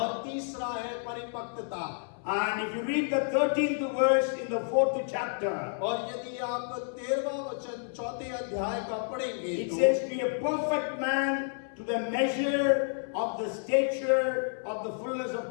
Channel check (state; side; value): silent; right; 58 dB below the other